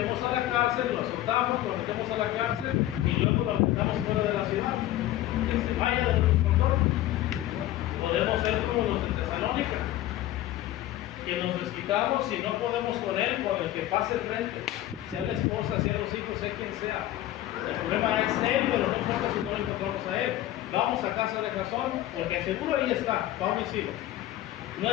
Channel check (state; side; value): quieter; right; 14.2 dB